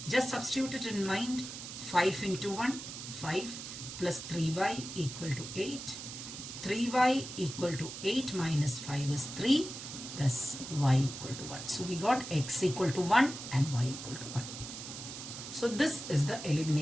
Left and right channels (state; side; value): noise; right; hiss, 9 dB below the sound